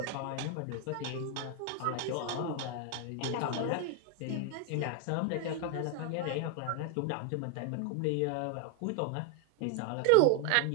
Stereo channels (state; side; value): different; both; correlation 0.01